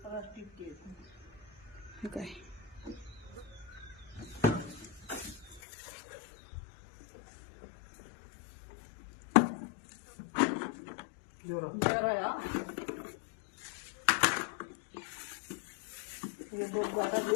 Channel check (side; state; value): right; drops out; at 5.6 s